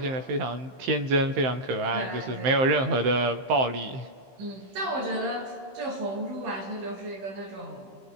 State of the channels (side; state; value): left; late; 15 ms